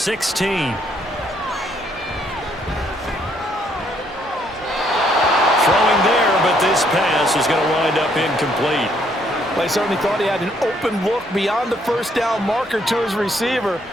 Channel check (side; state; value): both; normal; correlation 0.69